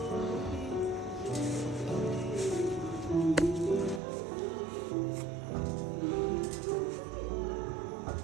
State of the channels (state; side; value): drops out; left; at 4.0 s